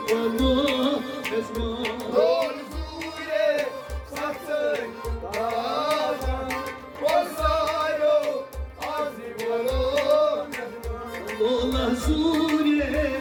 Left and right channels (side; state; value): both; identical; correlation 1.00